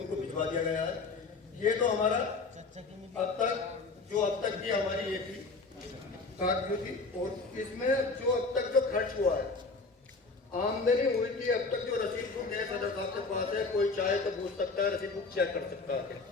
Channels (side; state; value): right; quieter; 3.9 dB